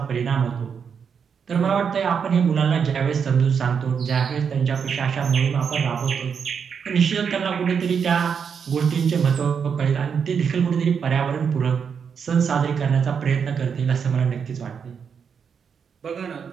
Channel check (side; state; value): left; quieter; 6.7 dB